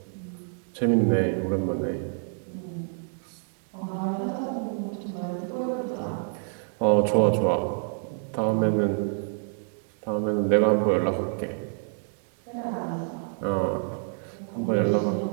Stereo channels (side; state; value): left; silent; 60 dB below the other